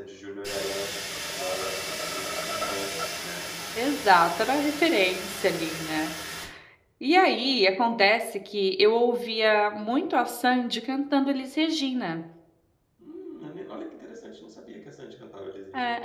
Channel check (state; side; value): identical; both; correlation 1.00